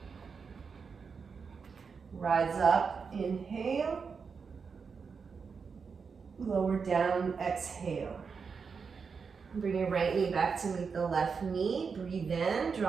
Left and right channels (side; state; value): left; quieter; 5.6 dB